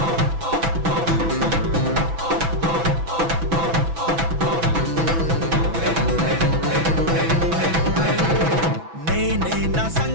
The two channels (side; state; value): left; late; 6.0 ms